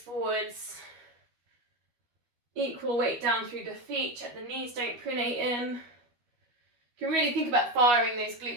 Equal weight down through the feet. Check the knees don't pronate in. You can really think about firing those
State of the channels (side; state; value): left; late; 12 ms